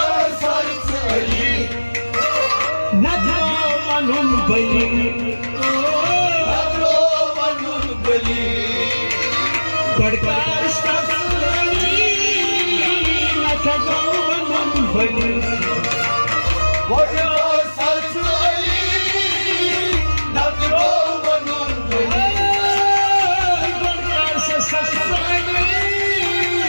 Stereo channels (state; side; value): inverted; both; correlation -1.00